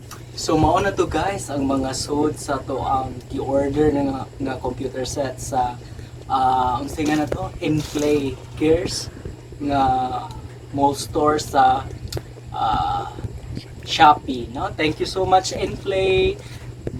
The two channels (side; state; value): both; identical; correlation 1.00